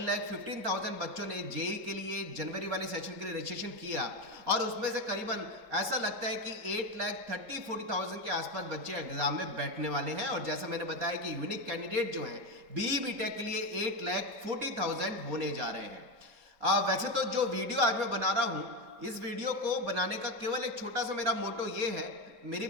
बच्चों ने जेई के लिए जनवरी वाले सेशन के लिए रजिस्ट्रेशन किया और उसमें से करीबन ऐसा लगता है कि 8,30,40,000 के आसपास बच्चे एग्जाम में बैठने वाले हैं। और जैसा मैंने बताया कि यूनिक कैंडिडेट जो हैं बीई बीटेक के लिए 8,40,000 होने जा रहे हैं। वैसे तो जो वीडियो आज मैं बना रहा हूं, इस वीडियो को बनाने का केवल एक छोटा सा मेरा मोटो ये है। मेरी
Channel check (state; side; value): late; left; 4.3 ms